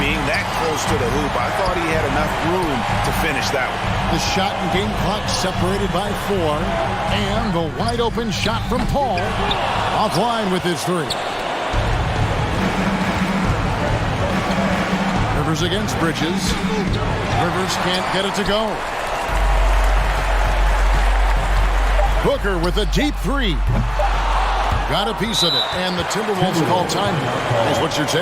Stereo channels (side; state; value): both; identical; correlation 1.00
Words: that close to the hoop, I thought he had enough room to finish that one. The shot and game clock separated by 4. And the wide open shot from Paul. Offline with his 3. Rivers against Bridges. Rivers can't get it to go. Booker with a deep three. Got a piece of it, and the Timberwolves call timeout. What's your